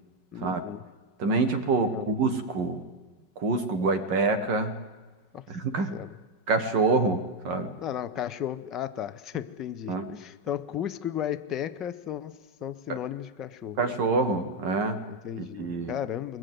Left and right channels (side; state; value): left; late; 5.4 ms